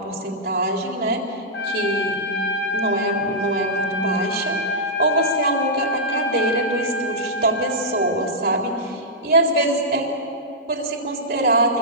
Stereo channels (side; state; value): both; normal; correlation -0.11